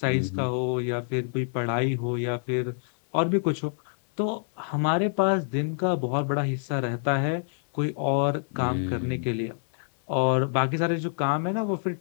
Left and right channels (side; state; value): right; silent; 60 dB below the other